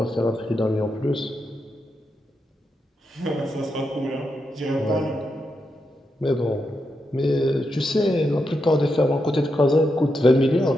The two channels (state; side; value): normal; both; correlation 0.85